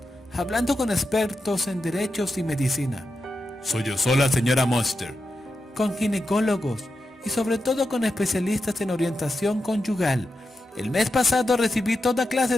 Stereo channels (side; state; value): both; normal; correlation 0.89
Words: hablando con expertos en derechos y medicina. Sollozó la señora Monster. Con ginecólogos y sobre todo con especialistas en orientación conyugal. El mes pasado recibí toda clase